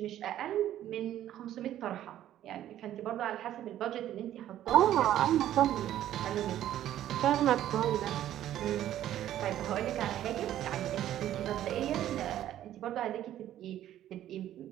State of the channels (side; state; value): left; quieter; 12.2 dB